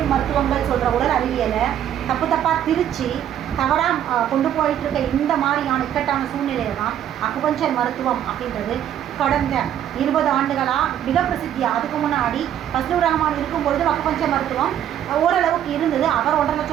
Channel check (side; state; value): left; quieter; 10.5 dB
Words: மருத்துவங்கள் சொல்கிற உடல் அறிவியலை தப்பாக திரிச்சு தவறாக கொண்டு போயிட்டு இருக்க இந்த மாதிரியான இக்கட்டான சூழ்நிலையில் தான் அக்குபஞ்சர் மருத்துவம் அப்படின்றது கடந்த 20 ஆண்டுகளாக மிக பிரசித்தியாக. அதுக்கு முன்னாடி ஃபஸ்லூர் ரஹ்மான் இருக்கும்பொழுது அக்குபஞ்சர் மருத்துவம் ஓரளவுக்கு இருந்தது. அவர் 1.5